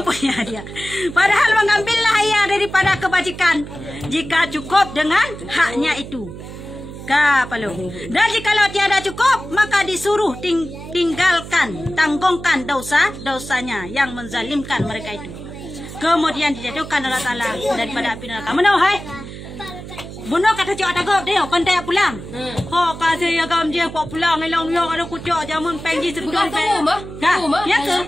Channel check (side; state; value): right; noise; hum, 12 dB below the sound